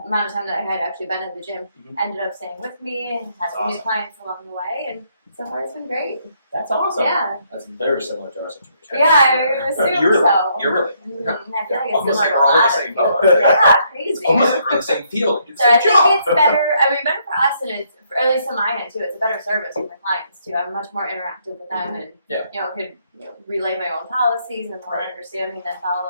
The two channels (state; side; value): inverted; both; correlation -0.72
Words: amount of time that I had actually been at the gym Mhm. ended up staying with me and had That's some new awesome. clients along the way, and so far it's been great. That's awesome. Yeah. That's very similar to our situation. Yeah, I assume so. You're really. Mhm, I feel like it's Almost like similar we're all to in a the lot same of boat. people. Yeah, crazy. It's almost like we're in the same field. It's So I the think job. it's better. I mean, better for us, and it's or at least on my end too. It's a better service for my clients too. I'm much more interactive with them, and Yeah. could relay my own policies and more Right. understanding than